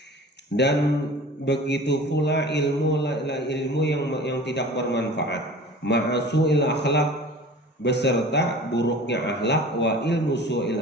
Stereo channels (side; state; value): both; normal; correlation 0.41